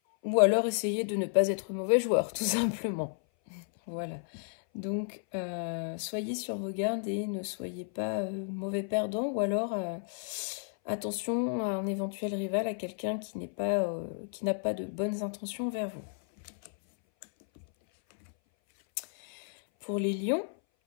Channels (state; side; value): silent; right; 56 dB below the other